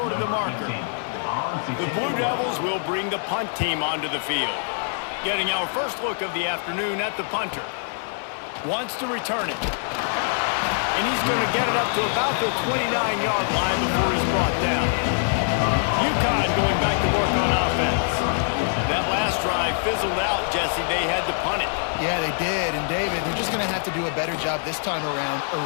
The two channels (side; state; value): right; silent; digital silence